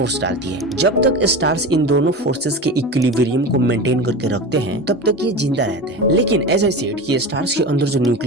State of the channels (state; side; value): normal; both; correlation 0.28